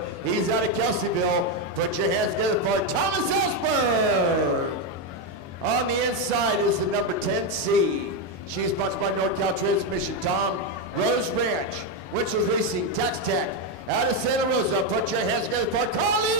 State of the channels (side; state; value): left; late; 22 ms